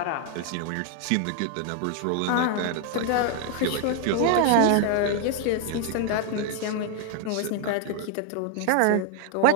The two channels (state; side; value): different; both; correlation 0.00